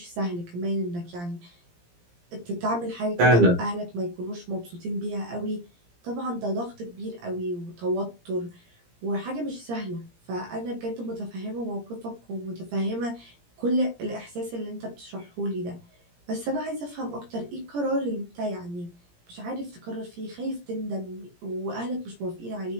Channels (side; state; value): left; late; 17 ms